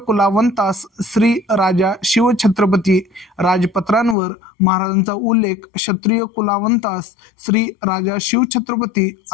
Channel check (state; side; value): drops out; right; at 4.2 s